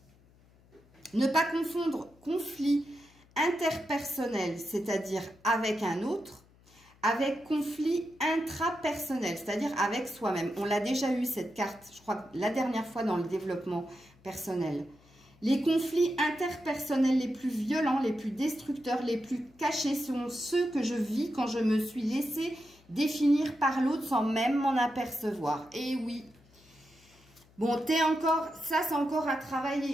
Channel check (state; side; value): noise; left; hum, 29 dB below the sound